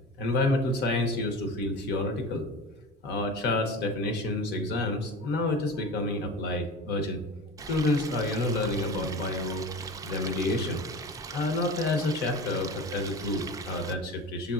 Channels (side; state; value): both; normal; correlation 0.32